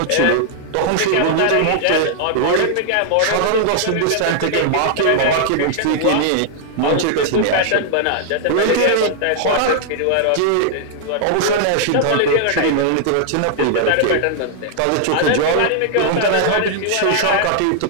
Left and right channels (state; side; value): different; both; correlation -0.01